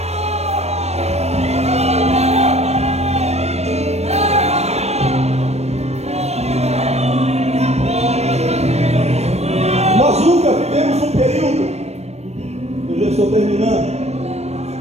Nós nunca vivemos um período, eu já estou terminando,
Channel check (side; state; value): left; late; 0.31 ms